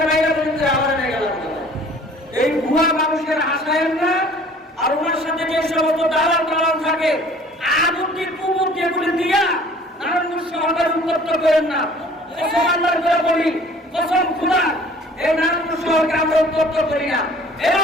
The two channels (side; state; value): both; normal; correlation 0.51